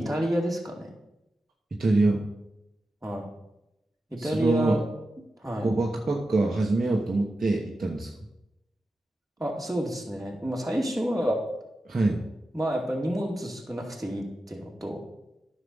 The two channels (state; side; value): normal; both; correlation 0.91